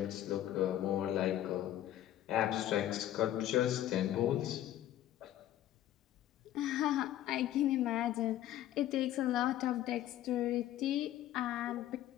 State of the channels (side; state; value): right; quieter; 12.8 dB